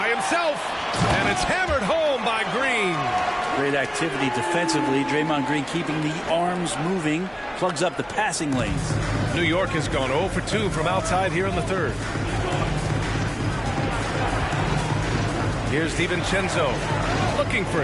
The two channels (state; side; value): identical; both; correlation 1.00